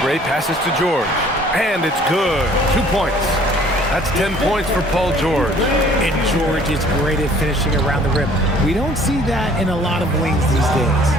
passes to George. And it's good. 2 points. That's 10 points for Paul George. And George is great at finishing around the rim. We don't see that in a lot of wings these days.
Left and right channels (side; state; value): both; normal; correlation 0.55